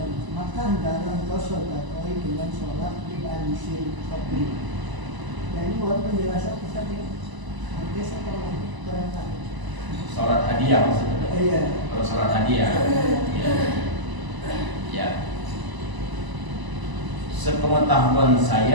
maka hendaklah kau sodakoi dengan sholat di ansil kubur. Ya ini buat penjelasan kita nih. Nanti saya kalau berangkat. Sholat hadiah maksudnya. Iya. Kalau sholat hadiah. Ya. Sepengetahuan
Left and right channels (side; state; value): left; late; 1.0 ms